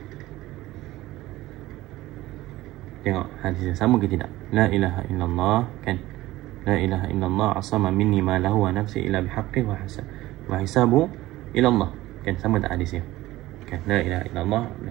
tengok hadisnya sama ke tidak? La ilaha illallah kan. La ilaha illallah asama minni ma lahu wa nafsi illa bihaqqi wa hisabu ila Allah. Kan sama tak hadisnya? Kan, la ilaha illallah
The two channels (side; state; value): left; quieter; 17.1 dB